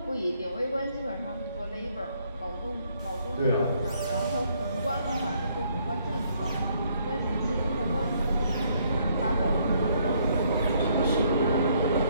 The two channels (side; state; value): both; inverted; correlation -0.68